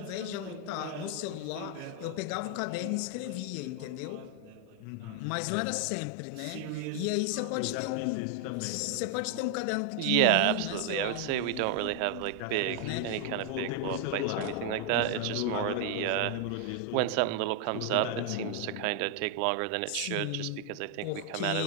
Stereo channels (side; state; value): both; different; correlation 0.00